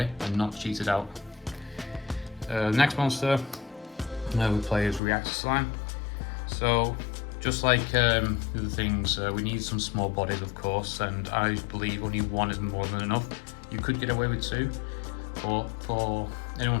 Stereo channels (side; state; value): right; drops out; at 5.0 s